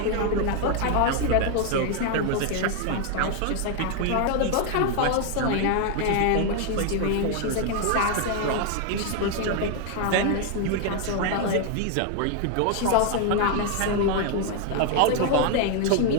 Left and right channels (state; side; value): different; both; correlation 0.00